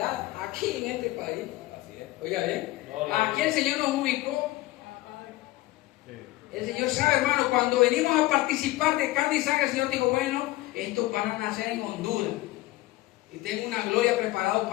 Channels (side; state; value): right; quieter; 18.0 dB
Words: aquí en este país. Oiga bien, aquí el Señor nos ubicó. El Señor sabe, hermano, cuando venimos a participar de carne y sangre, el Señor dijo, bueno, estos van a nacer en Honduras. Y tengo una gloria preparada